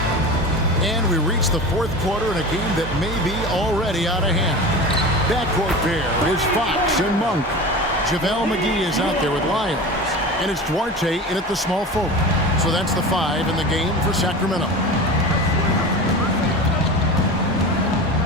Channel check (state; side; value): normal; both; correlation 0.31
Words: And we reach the 4th quarter in a game that may be already out of hand. Backcourt pair is Fox and Monk. JaVale McGee is out there with Lyons. And it's Duarte in at the small forward. So that's the 5 in the game for Sacramento.